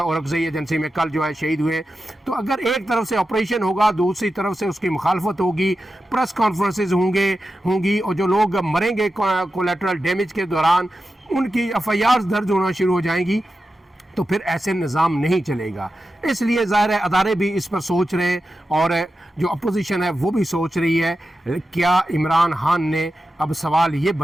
औरंगज़ई एजेंसी में कल जो है शहीद हुए। तो अगर एक तरफ से ऑपरेशन होगा, दूसरी तरफ से उसकी मुखालफत होगी, प्रेस कॉन्फ्रेंसेज होंगी और जो लोग मरेंगे कोलेटरल डैमेज के दौरान उनकी FIRs दर्ज होना शुरू हो जाएंगी, तो फिर ऐसे निज़ाम नहीं चलेगा। इसलिए ज़ाहिर है अदारे भी इस पर सोच रहे हैं और जो अपोजिशन है वो भी सोच रही है क्या इमरान खान ने, अब सवाल ये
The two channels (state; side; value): normal; both; correlation 0.91